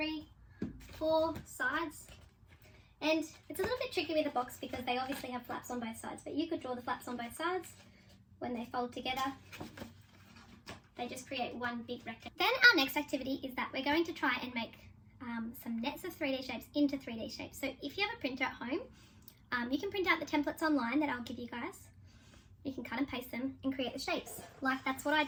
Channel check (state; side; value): identical; both; correlation 1.00